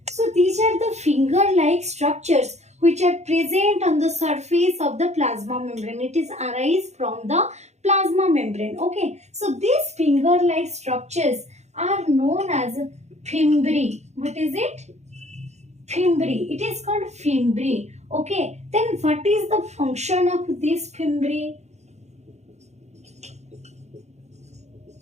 so these are the finger-like structures which are present on the surface of the plasma membrane. It is arise from the plasma membrane. Okay, so these finger-like structures are known as fimbriae. What is it? Fimbriae. It is called fimbriae. Okay, then what is the function of this fimbriae?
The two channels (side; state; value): left; late; 0.32 ms